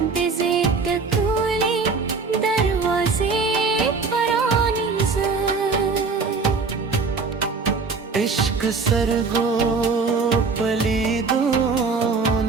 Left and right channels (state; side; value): quieter; left; 4.5 dB